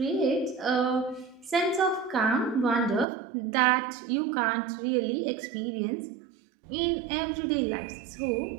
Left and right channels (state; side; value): drops out; left; at 3.1 s